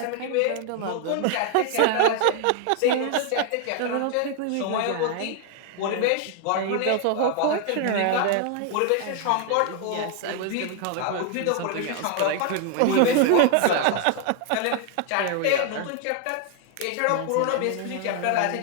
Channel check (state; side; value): different; both; correlation 0.00